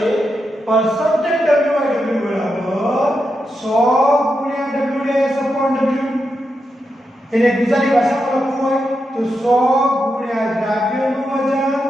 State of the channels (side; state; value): both; normal; correlation 0.86